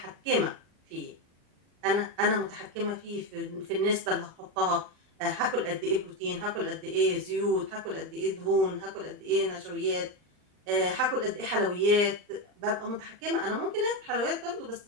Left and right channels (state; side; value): late; left; 39 ms